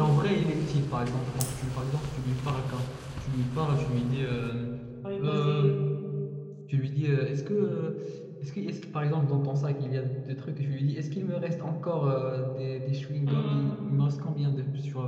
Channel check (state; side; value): identical; both; correlation 1.00